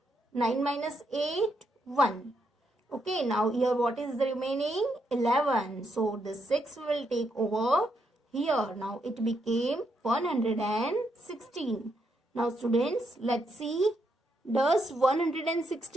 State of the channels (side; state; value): both; normal; correlation 0.79